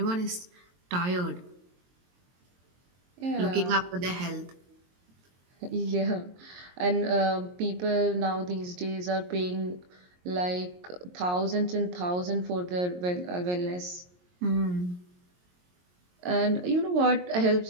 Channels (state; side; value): late; left; 22 ms